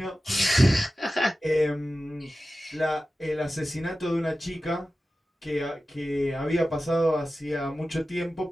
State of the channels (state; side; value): normal; both; correlation 0.94